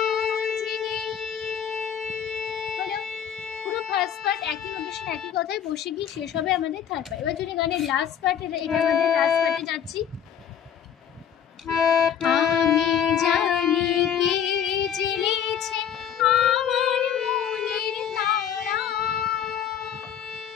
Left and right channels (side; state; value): right; quieter; 8.9 dB